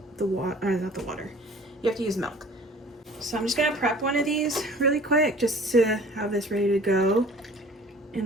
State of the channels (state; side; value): normal; both; correlation 0.47